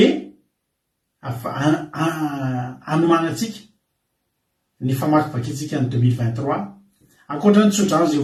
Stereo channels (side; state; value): both; identical; correlation 1.00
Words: anomanantsika ny famakivakintsika ny 2023 ankoatra ny tsodrano zay